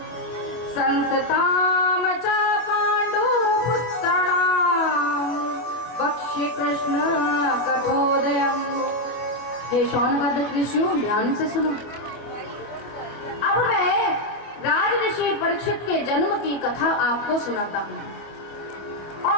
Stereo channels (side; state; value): right; late; 25 ms